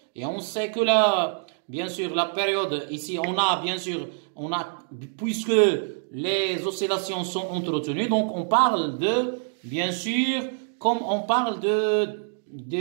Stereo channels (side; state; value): left; silent; digital silence